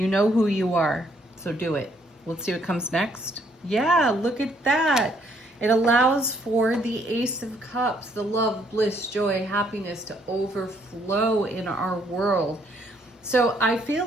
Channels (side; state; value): both; normal; correlation 0.68